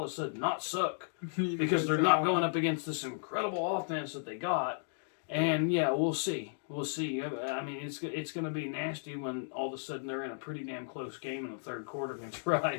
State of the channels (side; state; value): right; silent; digital silence